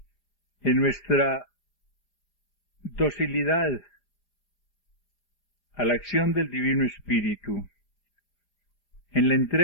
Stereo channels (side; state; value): right; late; 4.9 ms